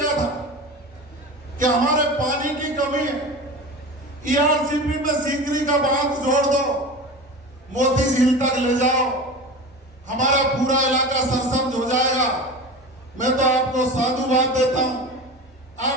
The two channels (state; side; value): normal; both; correlation 0.30